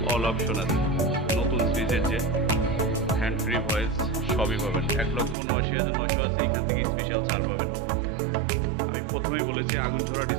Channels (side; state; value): left; drops out; at 5.4 s